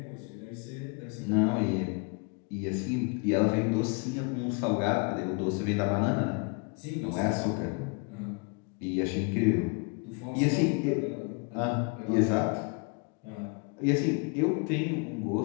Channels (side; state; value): right; quieter; 33.8 dB